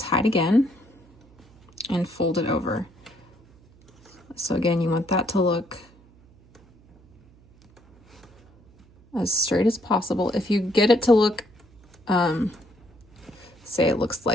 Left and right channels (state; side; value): noise; right; hum, 28 dB below the sound